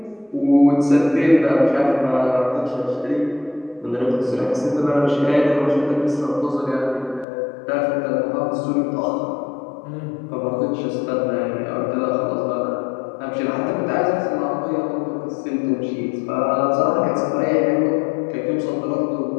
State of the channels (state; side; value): drops out; right; at 7.2 s